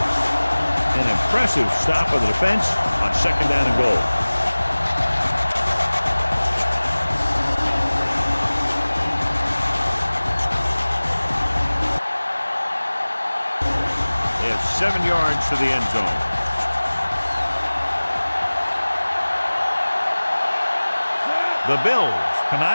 An impressive stop of the defense on 2nd down and goal. They have 7 yards to the end zone. The Bills come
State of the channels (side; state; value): both; inverted; correlation -1.00